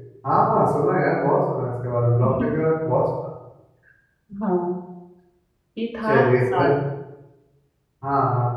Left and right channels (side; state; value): both; identical; correlation 1.00